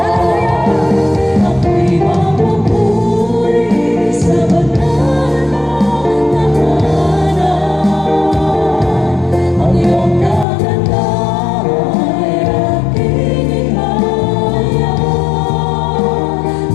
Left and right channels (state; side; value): drops out; right; at 10.5 s